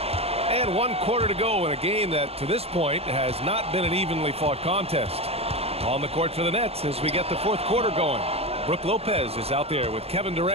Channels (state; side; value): late; left; 0.29 ms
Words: And 1 quarter to go in a game that, to this point, has not been an evenly fought contest. On the court for the Nets as we get the 4th quarter going. Brook Lopez is out there with Kevin